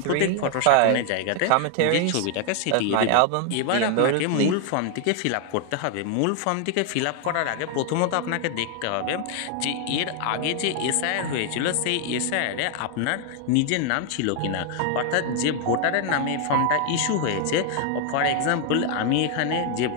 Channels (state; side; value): different; both; correlation 0.00